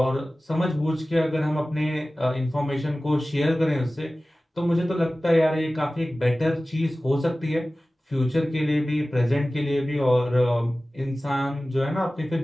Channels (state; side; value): normal; both; correlation 0.97